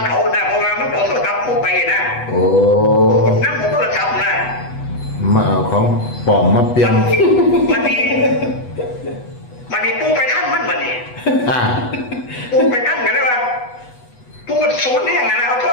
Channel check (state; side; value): late; right; 8.1 ms